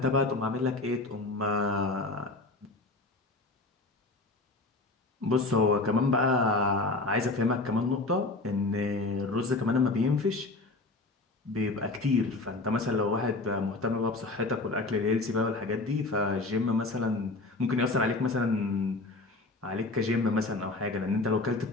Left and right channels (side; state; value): right; quieter; 3.1 dB